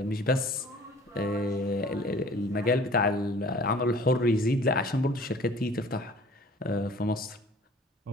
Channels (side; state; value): both; normal; correlation 0.49